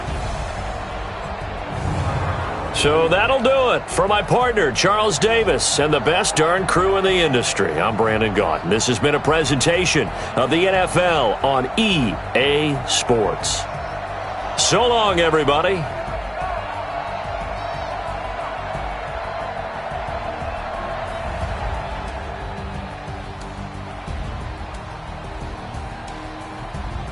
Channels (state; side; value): identical; both; correlation 1.00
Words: So that'll do it for my partner, Charles Davis, and the best darn crew in the industry. I'm Brandon Gaunt. This has been a presentation of the NFL on EA Sports. So long, everybody.